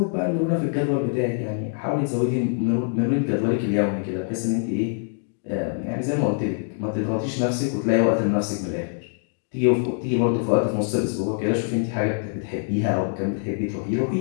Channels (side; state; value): right; silent; digital silence